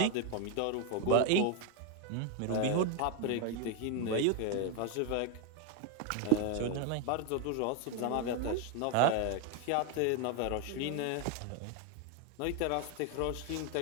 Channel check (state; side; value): different; both; correlation 0.01